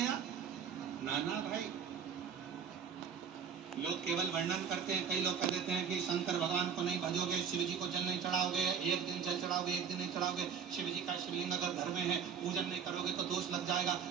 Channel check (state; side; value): quieter; left; 7.1 dB